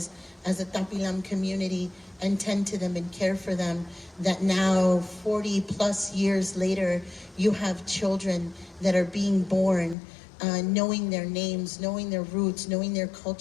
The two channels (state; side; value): drops out; right; at 10.0 s